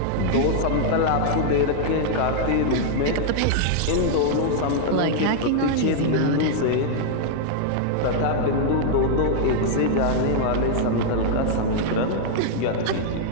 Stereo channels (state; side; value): different; both; correlation -0.01